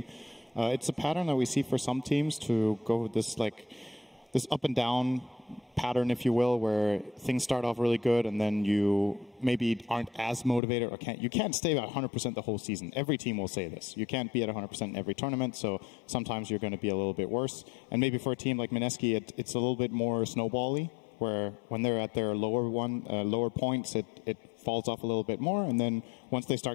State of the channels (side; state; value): right; drops out; at 10.6 s